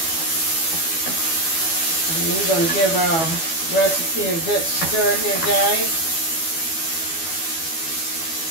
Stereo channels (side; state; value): right; late; 12 ms